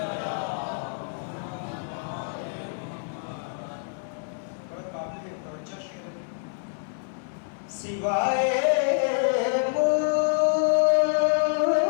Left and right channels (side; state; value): right; silent; 60 dB below the other